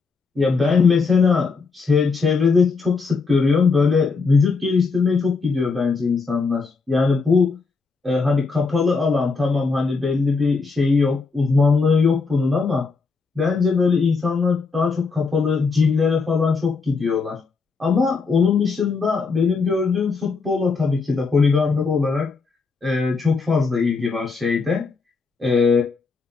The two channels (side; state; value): right; quieter; 4.5 dB